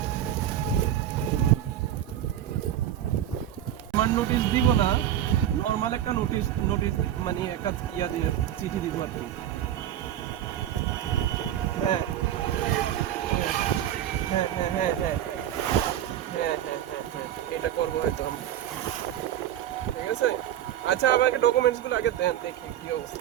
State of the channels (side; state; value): left; quieter; 11.4 dB